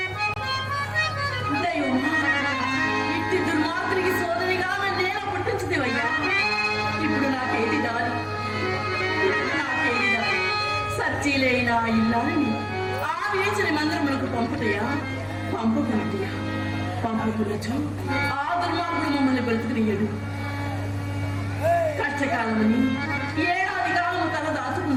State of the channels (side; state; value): both; identical; correlation 1.00